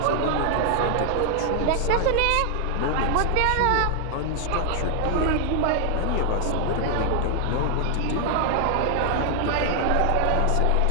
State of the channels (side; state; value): both; different; correlation 0.00